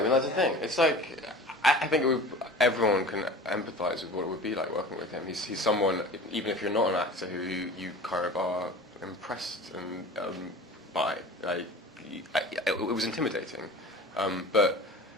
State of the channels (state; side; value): normal; both; correlation 0.38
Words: mean, that's the thing. It's like, I think everyone can empathise with what it would be like working with him. He's someone, even if you're not an actor, who you kind of are impressed and by. Like, it was intimidating, but